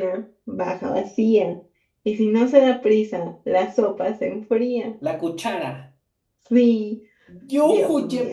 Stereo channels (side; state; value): both; identical; correlation 1.00